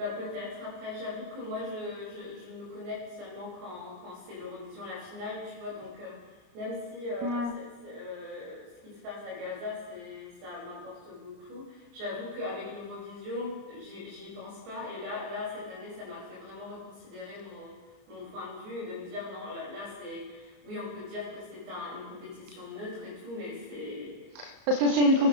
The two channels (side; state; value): left; late; 34 ms